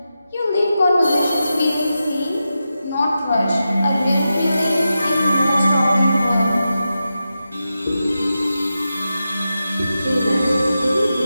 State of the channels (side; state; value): both; inverted; correlation -0.90